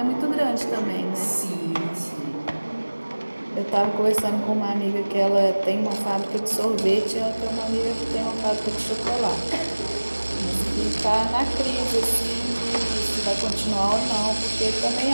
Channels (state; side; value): inverted; both; correlation -1.00